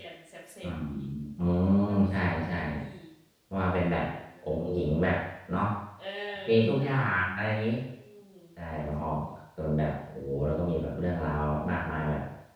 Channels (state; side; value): identical; both; correlation 1.00